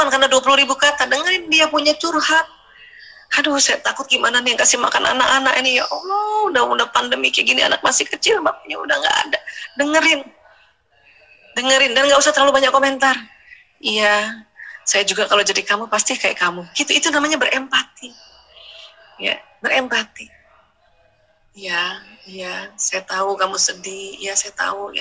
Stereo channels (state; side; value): identical; both; correlation 1.00